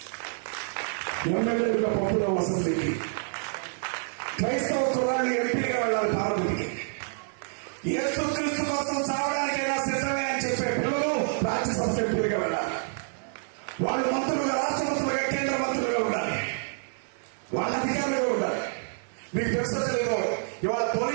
ఎమ్మెల్యేలుగా పంపుదాం అసెంబ్లీకి. క్రైస్తవ కుర్రాన్ని ఎంపీగా వెళ్ళాలి పార్లమెంట్కి. యేసుక్రీస్తు కోసం చావడానికైనా సిద్ధమే అని చెప్పే పిల్లలు రాజ్యసభ ఎంపీలుగా వెళ్ళాలి. వాళ్ళు మంత్రులుగా, రాష్ట్ర మంత్రులుగా, కేంద్ర మంత్రులుగా ఉండాలి. వాళ్ళ అధికారులుగా ఉండాలి. మీకు తెలుసో తెలియదు, ఇవాళ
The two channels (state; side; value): silent; left; 59 dB below the other